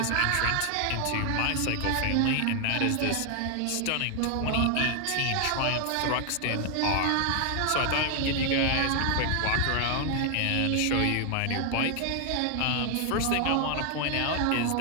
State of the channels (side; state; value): both; different; correlation 0.00